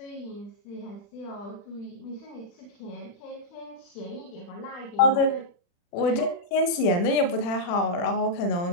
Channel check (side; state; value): right; late; 40 ms